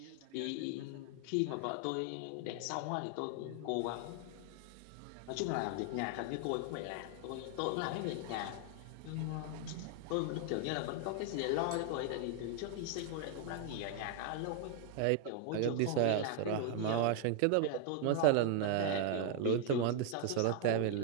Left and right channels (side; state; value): both; different; correlation 0.00